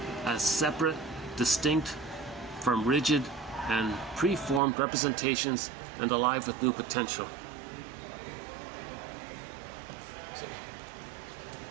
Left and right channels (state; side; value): drops out; left; at 4.6 s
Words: as separate, distinct from rigid and preformed representations and alive with new potential.